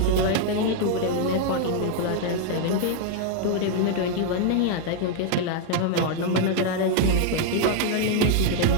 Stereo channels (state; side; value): different; both; correlation 0.00